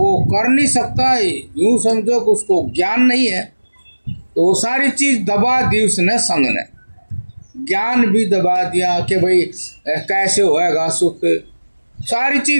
कर नहीं सकता, यूँ समझो कि उसको ज्ञान नहीं है, तो वो सारी चीज़ दबा दी उसने, संग ने ज्ञान भी दबा दिया कि भाई कैसे होएगा सुख, सारी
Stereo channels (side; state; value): both; inverted; correlation -1.00